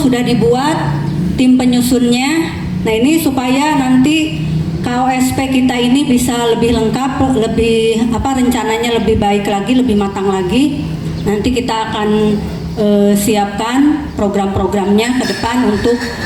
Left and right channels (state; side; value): identical; both; correlation 1.00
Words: dibuat tim penyusunnya. Nah, ini supaya nanti KOSP kita ini bisa lebih lengkap, lebih rencananya lebih baik lagi, lebih matang lagi. Nanti kita akan siapkan program-programnya ke depan untuk